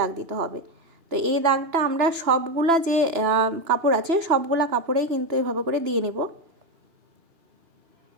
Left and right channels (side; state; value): left; late; 3.0 ms